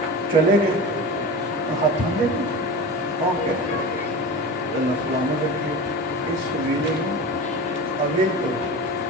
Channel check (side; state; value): both; normal; correlation 0.30